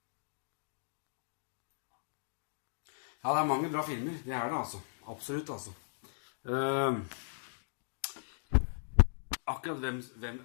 Ja, det er mange bra filmer. Det er det, altså. Absolutt, altså. Akkurat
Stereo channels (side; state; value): right; silent; digital silence